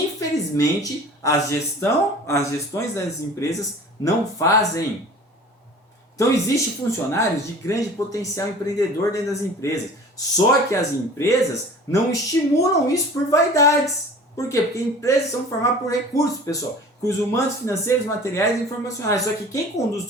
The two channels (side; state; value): both; normal; correlation 0.43